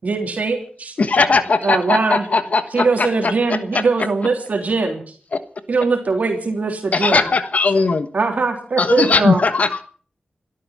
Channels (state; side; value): normal; both; correlation 0.75